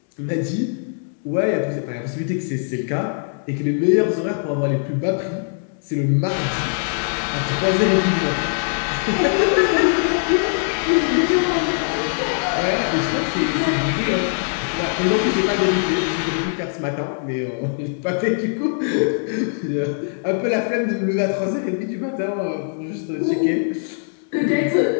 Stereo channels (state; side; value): silent; right; 65 dB below the other